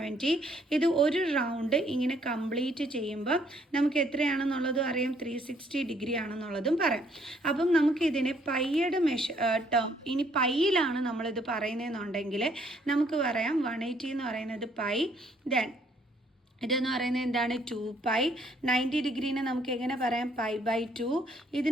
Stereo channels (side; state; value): both; normal; correlation 0.66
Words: ഇത് ഒരു റൗണ്ട് ഇങ്ങനെ കംപ്ലീറ്റ് ചെയ്യുമ്പോൾ നമുക്ക് എത്രയാണെന്നുള്ളതും അറിയാം, 360 ഡിഗ്രി ആണെന്നുള്ളതും പറയാം. അപ്പം നമുക്ക് ഇതിനെ പൈയുടെ ടേം ഇനി പൈയിലാണ് നമ്മളിത് പറയുന്നതെന്നുണ്ടെങ്കിൽ നമുക്ക് പറയാം 180 എന്ന് പറയുന്നത് പൈ, ദെൻ ഇതെന്ന് പറയുന്നത് എന്താണ് 2π. 90 ഡിഗ്രീനെ നമുക്ക് എങ്ങനെ പറയാം π/2.